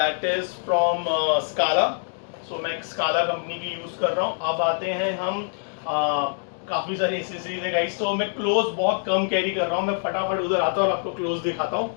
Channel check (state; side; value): silent; right; digital silence